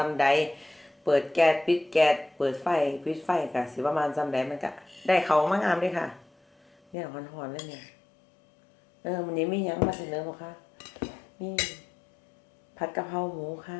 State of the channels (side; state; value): right; drops out; at 7.0 s